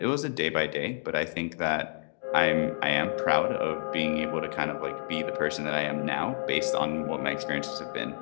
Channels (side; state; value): right; silent; digital silence